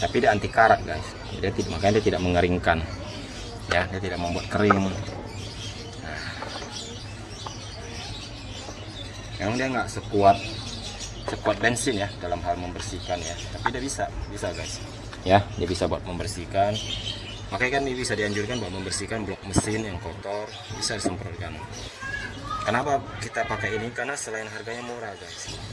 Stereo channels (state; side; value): identical; both; correlation 1.00